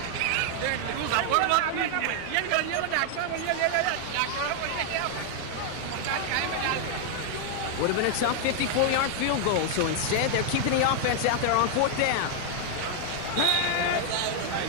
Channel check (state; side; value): different; both; correlation 0.00